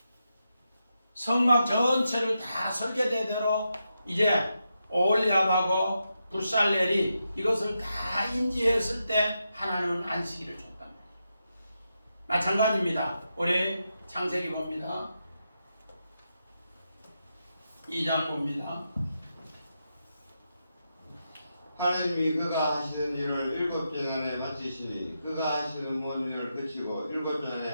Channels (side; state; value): both; inverted; correlation -0.86